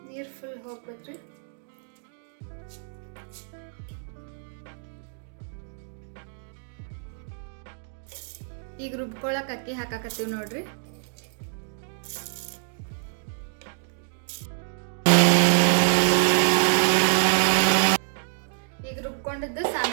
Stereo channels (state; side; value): silent; left; digital silence